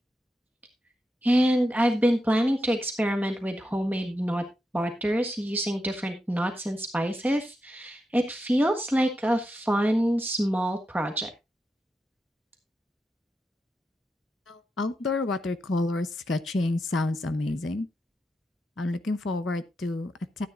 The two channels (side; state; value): both; normal; correlation 0.87